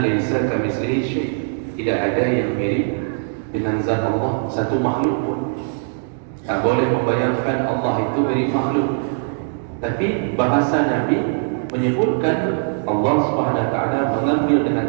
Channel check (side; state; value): left; silent; digital silence